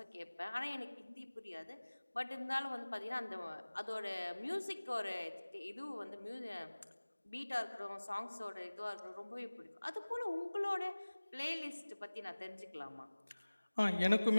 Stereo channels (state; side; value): inverted; both; correlation -1.00